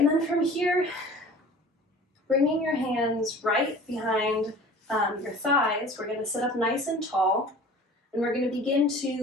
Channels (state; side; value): normal; both; correlation 0.43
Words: then from here, bringing your hands right behind your thighs, we're going to sit up nice and tall, and we're going to begin